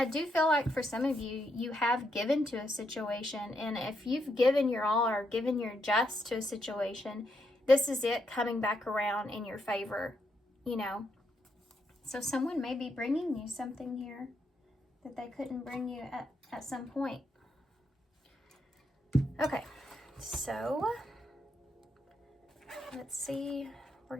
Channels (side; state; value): both; normal; correlation 0.79